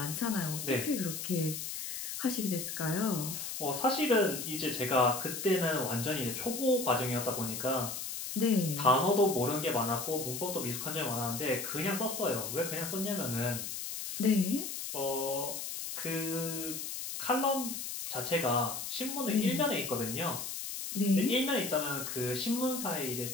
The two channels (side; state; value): left; noise; hiss, 5 dB below the sound